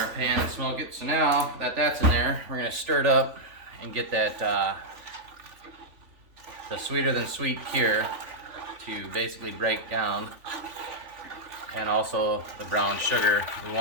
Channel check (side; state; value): left; late; 3.5 ms